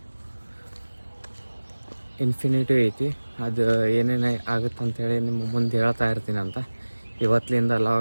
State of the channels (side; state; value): both; inverted; correlation -1.00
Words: ಇನ್ಫಿನಿಟಿ ಐತಿ. ಅದು ಏನೇನು ಆಗುತ್ತಂತೇಳಿ ನಿಮ್ಗೆ ಮುಂದೆ ಹೇಳ್ತಾ ಇರ್ತೀನಂತ. ಇವತ್ತಿನಿಂದ